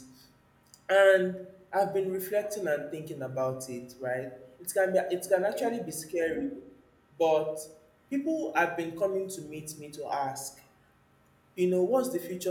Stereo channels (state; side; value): identical; both; correlation 1.00